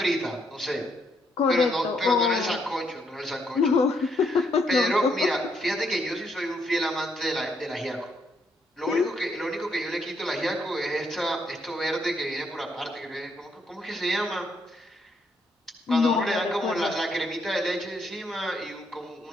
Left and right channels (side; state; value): both; normal; correlation 0.74